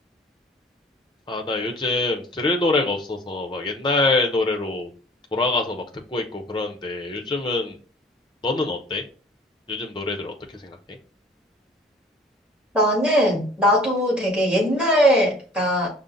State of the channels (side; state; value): both; normal; correlation 0.50